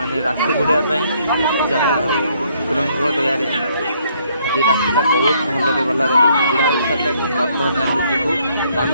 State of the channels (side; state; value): both; inverted; correlation -0.67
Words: राशि बुड़ापी जहाँ ठाकुर दयारे आज राशिटा बहुत भलरे भलरे बुढ़ा हो सारे बर्तमान आम जीवु आम